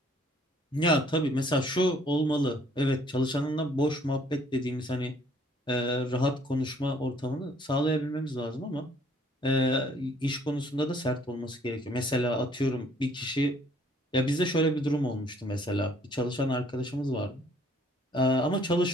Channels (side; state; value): both; normal; correlation 0.61